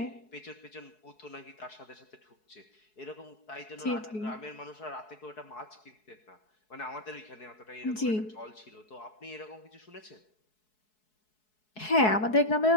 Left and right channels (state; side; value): late; right; 4.7 ms